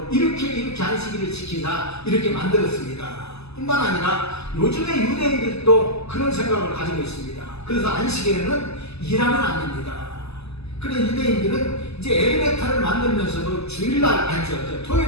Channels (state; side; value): late; right; 0.79 ms